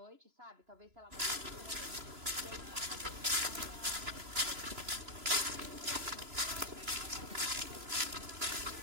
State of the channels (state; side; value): late; left; 3.0 ms